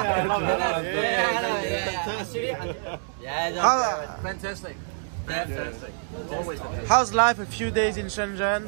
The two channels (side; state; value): left; silent; digital silence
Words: love it. Fantastic. Fantastic. Always fantastic. How's life a few days in Shenzhen?